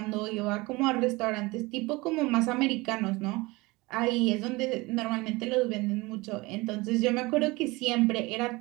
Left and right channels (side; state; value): left; quieter; 22.8 dB